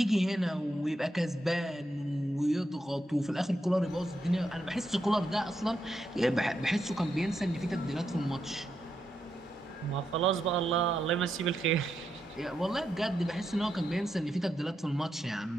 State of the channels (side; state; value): both; normal; correlation 0.83